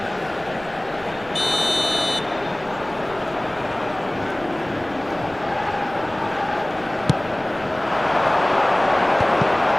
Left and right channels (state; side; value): noise; right; rumble, 22 dB below the sound